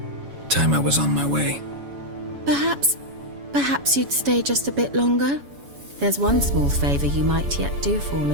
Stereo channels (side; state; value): left; late; 7.1 ms